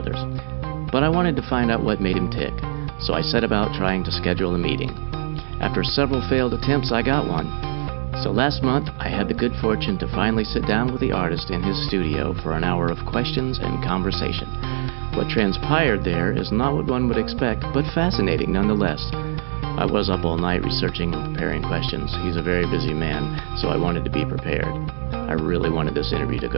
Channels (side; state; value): left; silent; 64 dB below the other